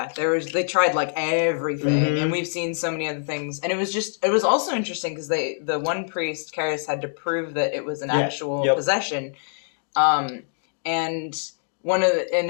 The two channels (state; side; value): silent; right; digital silence